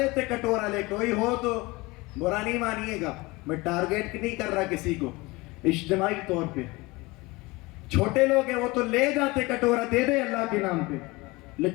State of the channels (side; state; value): right; quieter; 23.1 dB